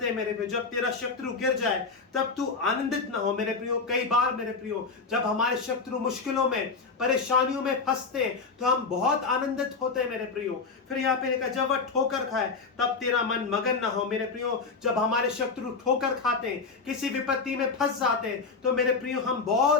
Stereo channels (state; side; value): quieter; right; 4.6 dB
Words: हैं मेरे प्रियो, जब तेरा शत्रु गिर जाए तब तू आनंदित ना हो। मेरे प्रियो, कई बार मेरे प्रियो जब हमारे शत्रु मुश्किलों में, परेशानियों में फंसते हैं तो हम बहुत आनंदित होते हैं मेरे प्रियो। फिर यहाँ पे लिखा, जब वह ठोकर खाए तब तेरा मन मगन ना हो। मेरे प्रियो, जब हमारे शत्रु ठोकर खाते हैं, किसी विपत्ति में फंस जाते हैं, तो मेरे प्रियो हम